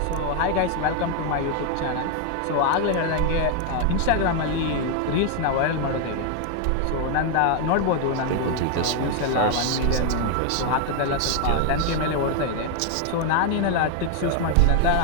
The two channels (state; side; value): different; both; correlation 0.01